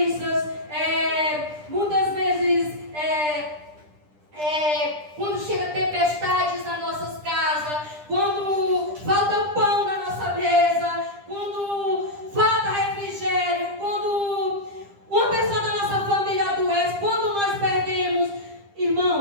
muitas vezes, quando chega tempestades nas nossas casas, quando falta pão na nossa mesa, quando falta refrigério, quando uma pessoa da nossa família adoece, quando nós perdemos.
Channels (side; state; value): left; late; 10 ms